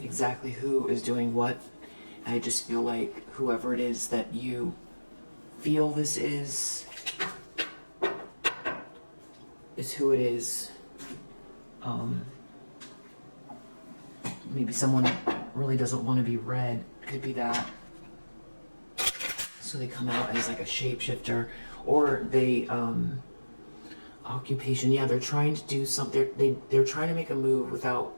exactly who is doing what. I just feel like whoever it is that you feel this is who it is. Maybe someone really doesn't want to be read. Could be that. So they come out as like a shapeshifter, or they occupation. Yeah, they're trying to do something. They're trying to make a move without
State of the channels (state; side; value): inverted; both; correlation -1.00